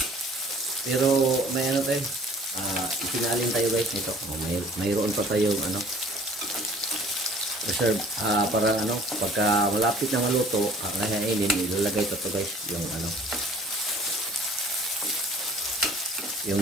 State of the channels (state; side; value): normal; both; correlation 0.51